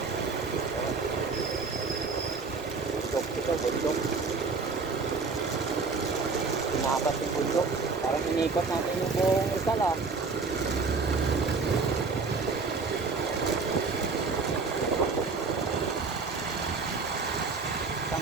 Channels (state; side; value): quieter; left; 4.4 dB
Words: Ito, bundok. Pinapas yung bundok. Parang inikot natin yung buong Rizal ah.